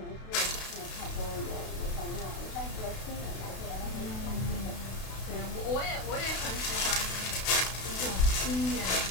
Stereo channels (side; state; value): right; late; 32 ms